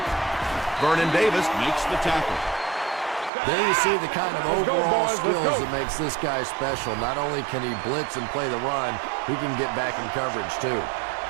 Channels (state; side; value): drops out; left; at 3.3 s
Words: Vernon Davis makes the tackle. There you see the kind of overall skills that makes this guy special. Not only can he blitz and play the run, he can get back in coverage too.